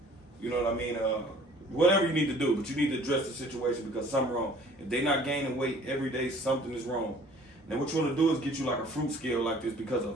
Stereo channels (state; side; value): normal; both; correlation 0.52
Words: You know what I mean? Whatever you need to do, but you need to address the situation because something's wrong. If they're not gaining weight every day, something is wrong. Now what you want to do is get you like a fruit scale like this, because a